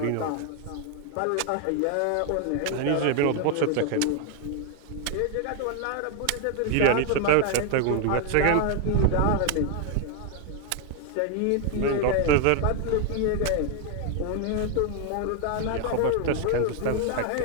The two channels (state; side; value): different; both; correlation 0.00